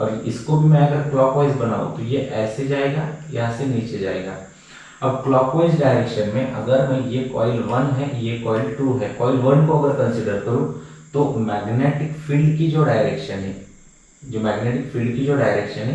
इसको भी मैं अगर क्लॉकवाइज बनाऊं तो ये ऐसे जाएगा, यहाँ से नीचे जाएगा। अब क्लॉकवाइज डायरेक्शन में अगर मैं, ये कॉइल 1 है, ये कॉइल 2 है, कॉइल 1 को अगर कंसिडर करूं तो मैग्नेटिक फील्ड की जो डायरेक्शन है, जो मैग्नेटिक फील्ड की जो डायरेक्शन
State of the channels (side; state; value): both; identical; correlation 1.00